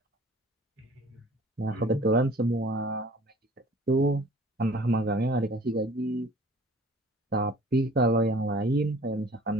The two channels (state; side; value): normal; both; correlation 0.50